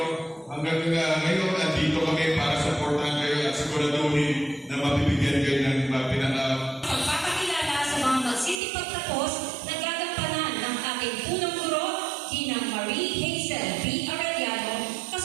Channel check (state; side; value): drops out; left; at 8.6 s